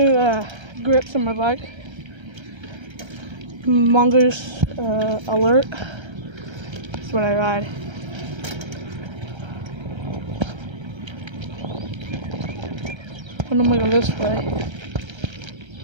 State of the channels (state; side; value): late; left; 1.3 ms